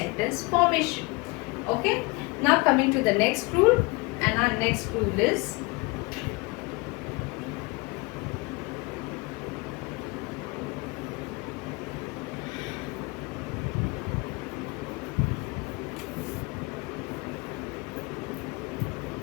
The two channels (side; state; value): right; quieter; 25.8 dB